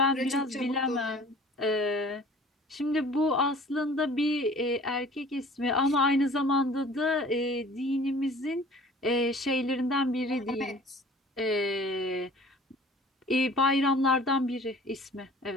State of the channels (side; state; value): both; normal; correlation 0.48